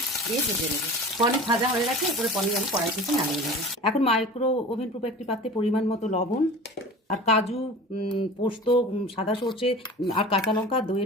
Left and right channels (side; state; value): both; normal; correlation 0.38